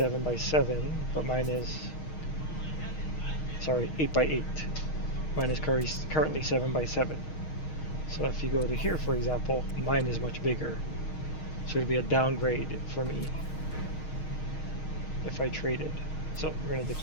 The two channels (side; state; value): right; late; 6.4 ms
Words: but mine is, sorry, 8x8. Mine is currently 7x7. So if you go to here, for example, mine is much bigger. So it'd be a downgrade for me if I traded. So we're going to